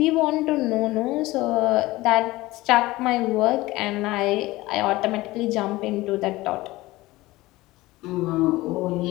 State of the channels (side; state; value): right; quieter; 19.1 dB